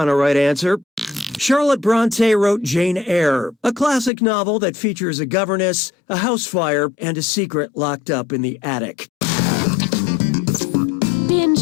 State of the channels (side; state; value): right; drops out; at 4.1 s